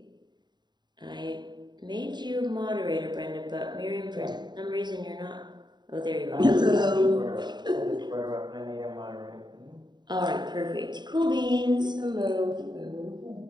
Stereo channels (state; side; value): late; left; 0.21 ms